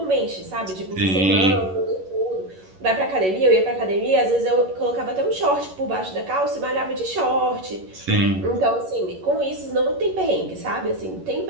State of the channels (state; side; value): late; left; 11 ms